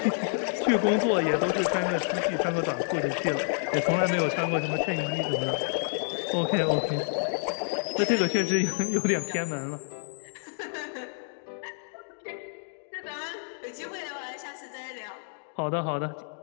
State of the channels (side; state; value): right; silent; 59 dB below the other